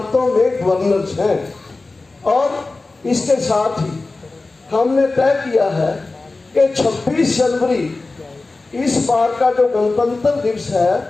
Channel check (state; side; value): quieter; right; 3.4 dB